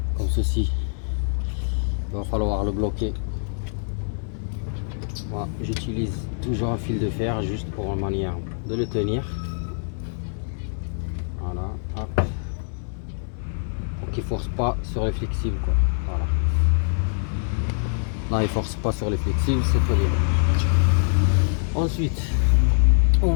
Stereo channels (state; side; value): silent; right; 62 dB below the other